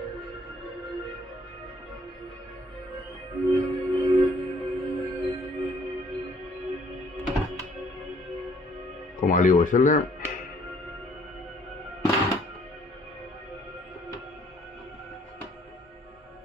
Ακόμα λίγο ήθελε.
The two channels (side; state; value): both; normal; correlation 0.61